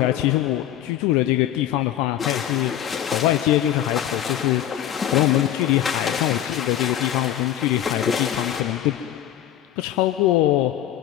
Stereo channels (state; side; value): quieter; right; 11.6 dB